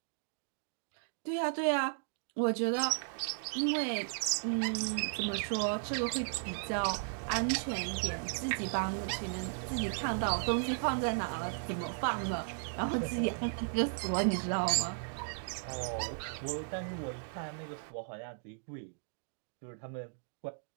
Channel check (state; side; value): silent; left; digital silence